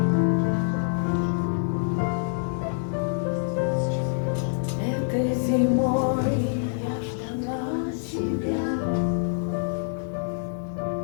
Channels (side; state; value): right; silent; digital silence